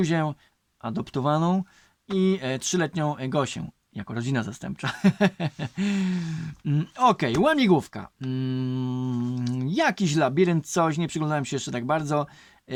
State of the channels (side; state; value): both; identical; correlation 1.00